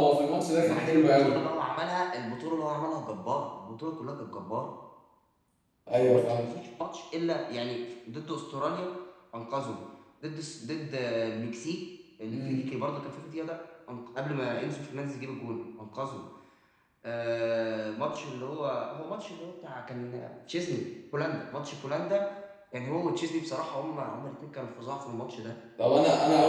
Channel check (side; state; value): both; identical; correlation 1.00